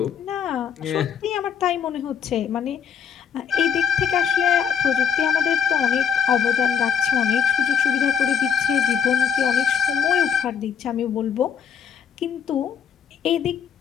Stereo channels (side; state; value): right; quieter; 7.9 dB